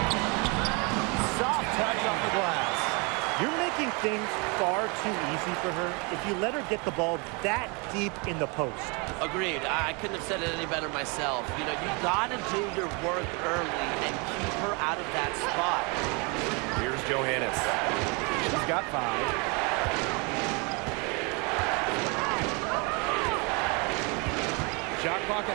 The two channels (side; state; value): left; quieter; 31.0 dB